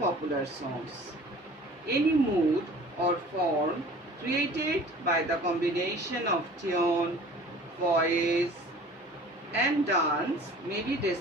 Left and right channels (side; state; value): both; normal; correlation 0.46